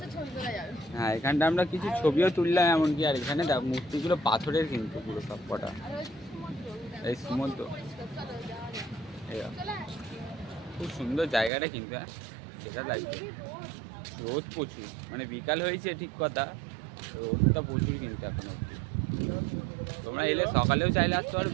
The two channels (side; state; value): left; drops out; at 11.5 s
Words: হ্যাঁ এখানটা আমরা কিছু ছবিও তুললাম এমনকি। আর এখানে দেখো মূর্তিগুলো পাথরের কিন্তু পুরো সব কটা, এই সমুদ্র, খুব সুন্দর জায়গাটা কিন্তু, হ্যাঁ সেটা লাগবে। রোদ প্রচুর, মানে বিকাল হয়েছে ঠিক কথা, রোদটা প্রচুর কিন্তু এখন অবধি। তোমরা এলে সকালেও চাইলে আসতে পারো,